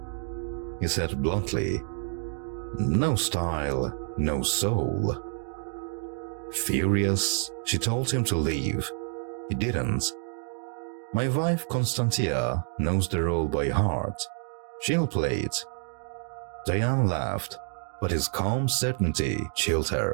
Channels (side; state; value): left; silent; 59 dB below the other